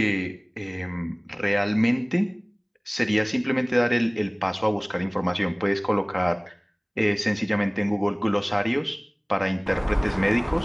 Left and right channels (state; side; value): identical; both; correlation 1.00